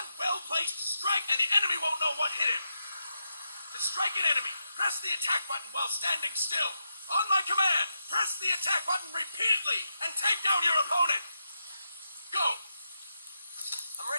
well-placed strike and the enemy won't know what hit him. To strike an enemy, press the attack button while standing still. On my command, press the attack button repeatedly and take down your opponent. Go! I'm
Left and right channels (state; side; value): inverted; both; correlation -0.84